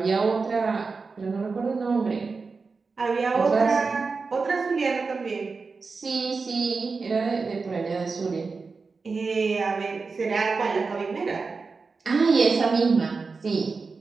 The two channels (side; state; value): left; quieter; 4.5 dB